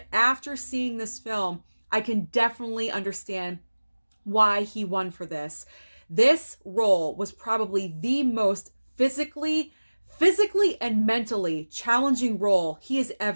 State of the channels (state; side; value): inverted; both; correlation -1.00